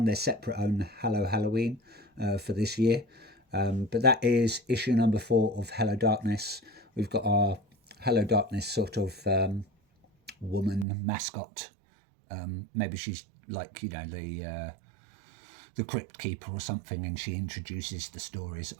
their separate own Hello Halloween for this year. But that is issue number 4 of Hello Darkness. We've got our Hello Darkness sort of woman mascot. Maybe she's like, the Crypt Keeper or something, and she introduces the stories.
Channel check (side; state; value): left; drops out; at 10.9 s